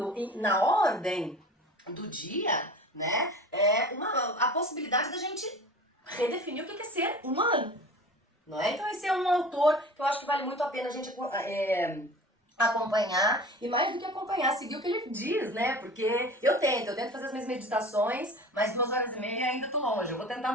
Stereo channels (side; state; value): both; normal; correlation 0.39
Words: na ordem do dia, né, a possibilidade da gente redefinir o que é ser humano. Não é? Então esse é um autor que eu acho que vale muito a pena a gente acompanhar, e mais do que acompanhar, seguir o que ele diz, né? Porque eu tento fazer as minhas meditações, mas 2 horas e meia ainda tô longe, eu vou tentar